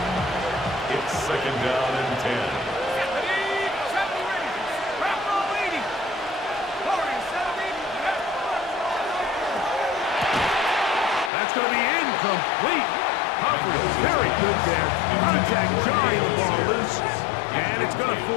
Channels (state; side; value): drops out; right; at 11.3 s